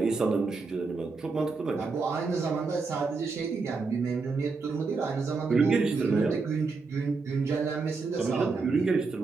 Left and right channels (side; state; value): left; quieter; 4.3 dB